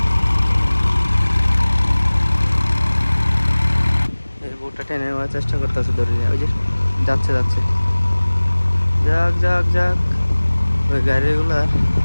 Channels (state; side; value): inverted; both; correlation -1.00